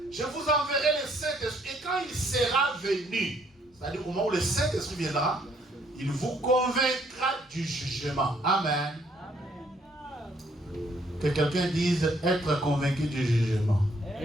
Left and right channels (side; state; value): both; normal; correlation 0.67